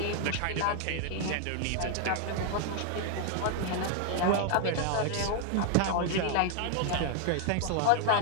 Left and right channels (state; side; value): different; both; correlation 0.00